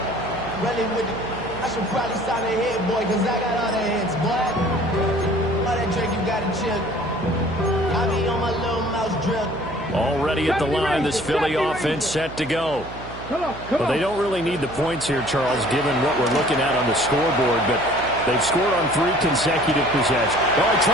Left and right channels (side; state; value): right; noise; hum, 14 dB below the sound